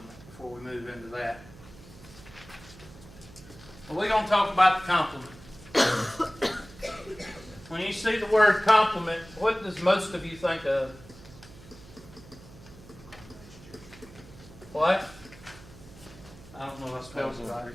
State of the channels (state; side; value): noise; right; hum, 19 dB below the sound